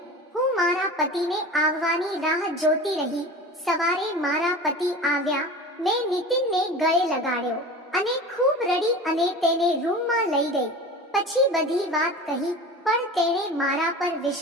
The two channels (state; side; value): normal; both; correlation 0.34